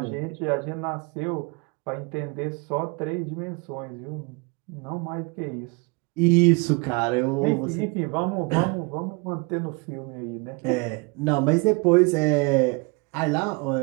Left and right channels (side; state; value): left; quieter; 29.9 dB